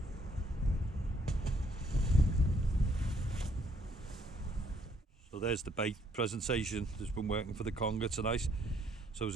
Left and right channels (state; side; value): normal; both; correlation 0.68